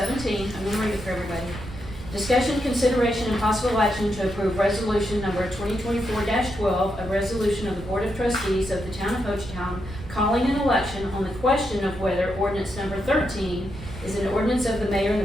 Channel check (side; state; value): right; noise; rumble, 13 dB below the sound